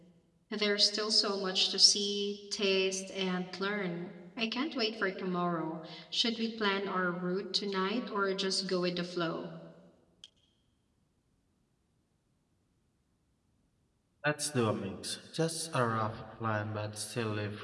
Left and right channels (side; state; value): both; identical; correlation 1.00